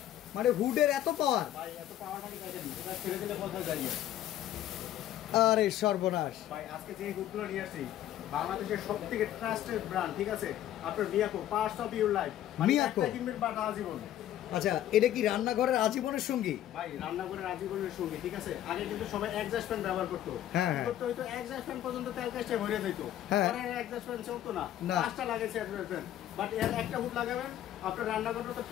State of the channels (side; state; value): right; quieter; 12.2 dB